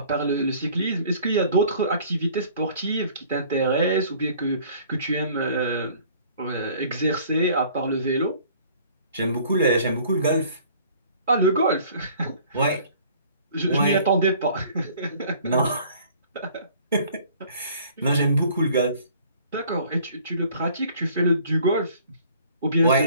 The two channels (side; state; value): both; inverted; correlation -0.53